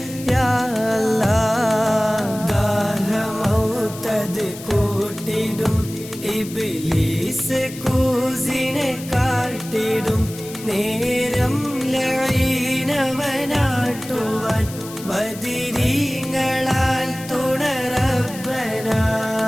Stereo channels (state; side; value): noise; left; hiss, 15 dB below the sound